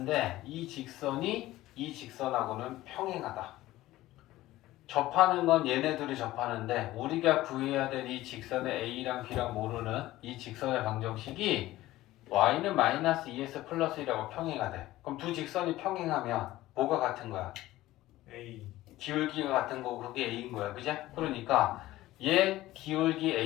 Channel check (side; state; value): right; quieter; 16.3 dB